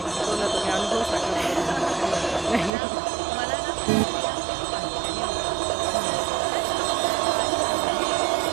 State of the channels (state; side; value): drops out; left; at 2.7 s